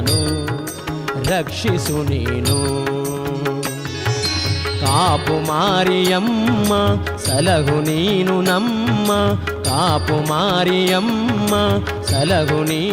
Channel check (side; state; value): both; identical; correlation 1.00